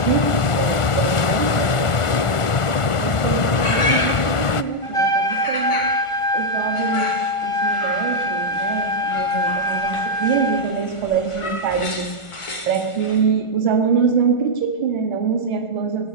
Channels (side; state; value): right; late; 1.4 ms